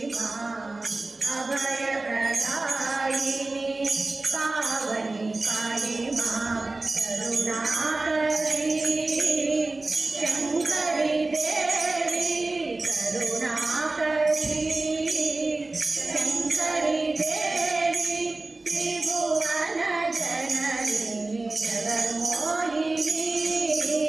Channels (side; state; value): left; quieter; 3.2 dB